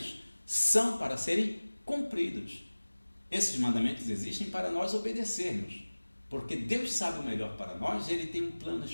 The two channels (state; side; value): inverted; both; correlation -1.00